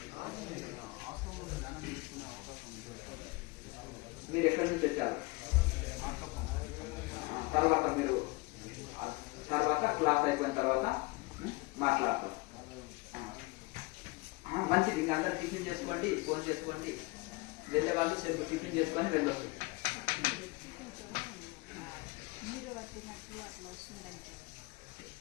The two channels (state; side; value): quieter; right; 24.1 dB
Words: మీరు ఎక్కడి నుంచి తెచ్చారు? తర్వాత క్లాస్ అయిపోయిన తర్వాత మాట్లాడతాం. మంచిది. ఇంకా అందరు టిఫిన్ చేసుకోండి, ఫోన్ చేసుకోండి. వెళ్ళే వాళ్ళు సెల్ఫ్ టిఫిన్ చేసుకొని వెళ్ళొచ్చు.